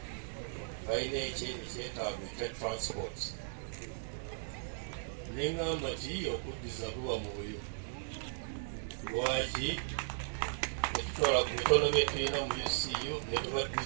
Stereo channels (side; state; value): left; silent; digital silence